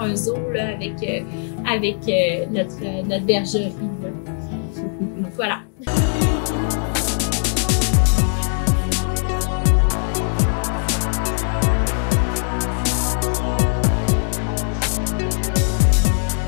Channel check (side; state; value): right; silent; digital silence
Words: zoo là, avec notre bergerie. Là. Voilà.